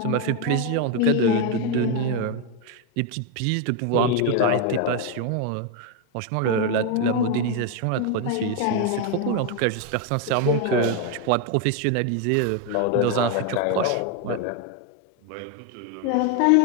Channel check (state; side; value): different; both; correlation 0.01